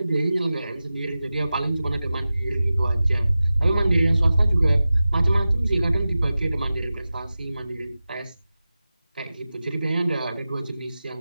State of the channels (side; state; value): both; inverted; correlation -0.95